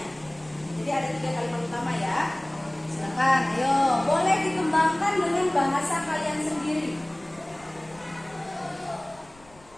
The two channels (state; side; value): noise; left; rumble, 27 dB below the sound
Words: Jadi ada 3 kalimat utama ya. Silakan, ayo. Boleh dikembangkan dengan bahasa kalian sendiri.